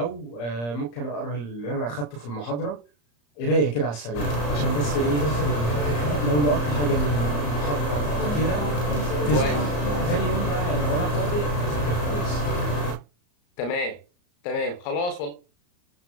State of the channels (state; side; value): late; right; 34 ms